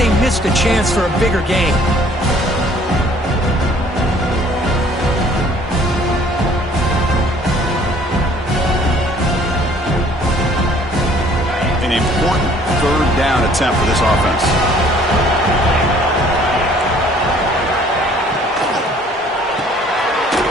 missed a chance for a bigger gain. An important 3rd down attempt for this offense.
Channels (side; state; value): both; normal; correlation 0.57